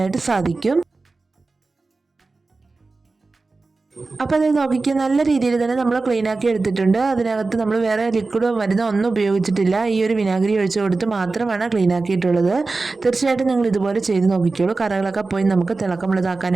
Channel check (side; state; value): left; quieter; 3.7 dB